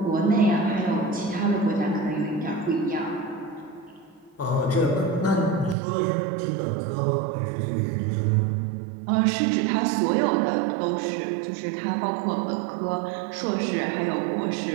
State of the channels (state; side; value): drops out; left; at 5.8 s